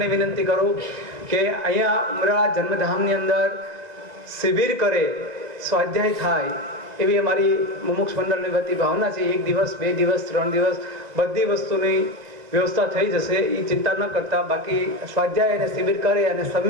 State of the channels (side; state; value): left; late; 2.0 ms